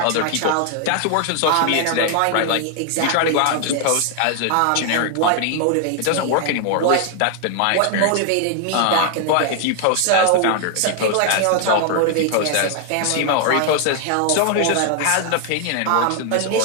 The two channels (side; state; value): both; different; correlation 0.00